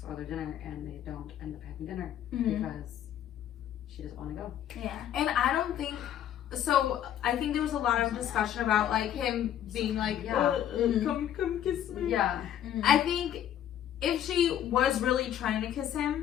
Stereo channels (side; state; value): right; quieter; 10.7 dB